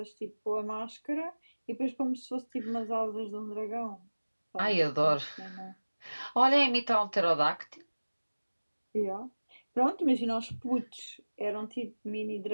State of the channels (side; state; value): both; inverted; correlation -1.00